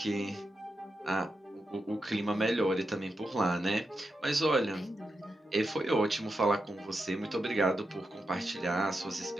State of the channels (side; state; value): both; normal; correlation 0.87